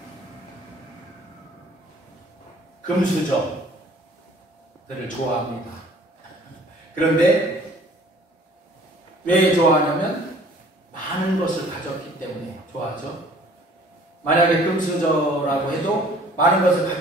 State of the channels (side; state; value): both; normal; correlation 0.54